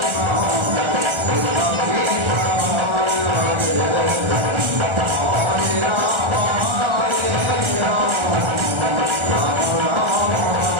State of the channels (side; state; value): left; late; 1.4 ms